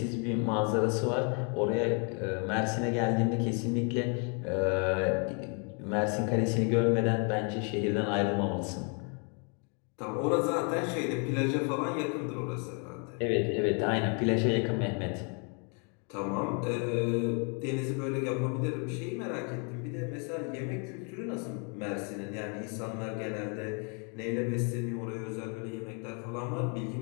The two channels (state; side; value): quieter; right; 37.9 dB